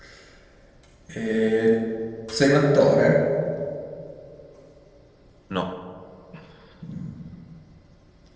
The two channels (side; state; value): both; identical; correlation 1.00